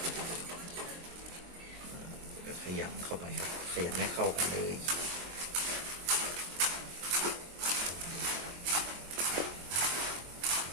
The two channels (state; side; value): late; left; 23 ms